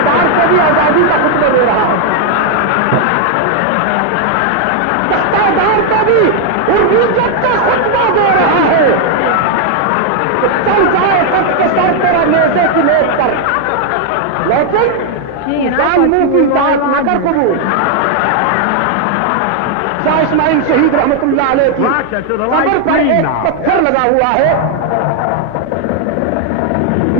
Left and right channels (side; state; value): both; different; correlation 0.00